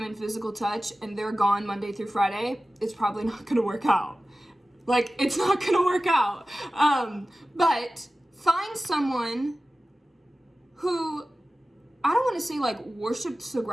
and physical touch and they're gone Monday through Friday, it's probably not gonna work out. Like, it's not gonna work out. But find someone who, I don't wanna say like worships the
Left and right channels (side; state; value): both; normal; correlation 0.95